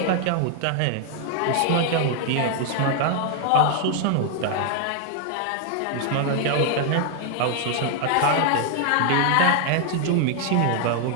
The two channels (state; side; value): different; both; correlation 0.00